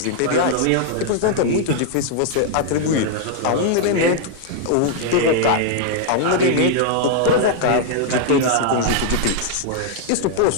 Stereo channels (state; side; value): different; both; correlation 0.00